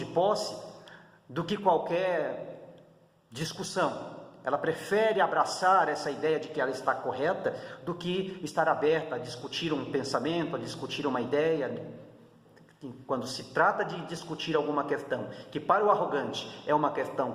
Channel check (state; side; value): identical; both; correlation 1.00